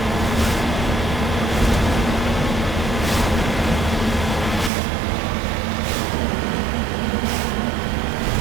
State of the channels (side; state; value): left; drops out; at 4.7 s